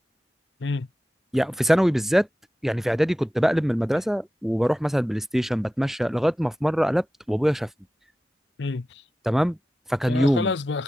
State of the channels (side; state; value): both; normal; correlation 0.94